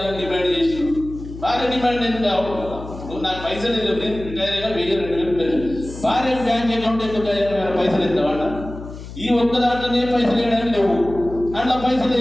డిమాండ్ చేసి, భార్య డిమాండ్ ఎందుకు కావు, నాకు పైసలు నేను రిటైర్ అయినా 1,000-2,000 పెన్షన్, భార్య బ్యాంక్ అకౌంట్ ఎందుకు పైసలు ఇస్తామంట. ఈ ఒక్క దాంట్లోనే పైసలు వేయడానికి లేవు, అట్లా పైసలు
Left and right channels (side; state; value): left; noise; hum, 12 dB below the sound